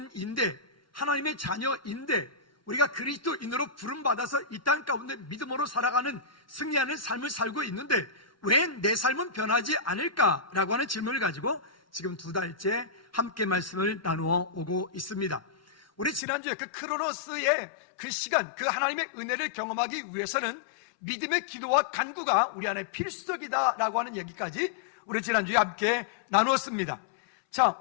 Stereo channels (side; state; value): right; drops out; at 16.2 s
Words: 하나님의 자녀인데, 우리가 그리스도인으로 부름받아서 이 땅 가운데 믿음으로 살아가는 승리하는 삶을 살고 있는데 왜 내 삶은 변하지 않을까라고 하는 질문을 가지고 지금 2달째 함께 말씀을 나누어 오고 있습니다. 우리 지난주에 그 크로노스의 그 시간, 그 하나님의 은혜를 경험하기 위해서는 믿음의 기도와 간구가 우리 안에 필수적이다라고 하는 얘기까지 우리 지난주에 함께 나누었습니다. 자,